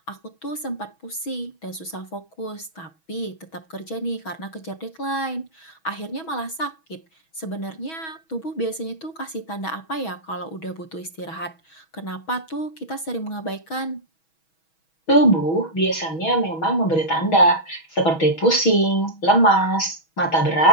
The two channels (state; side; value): late; right; 6.2 ms